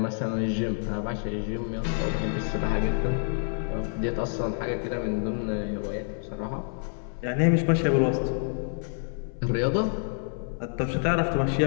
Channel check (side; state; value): right; silent; 58 dB below the other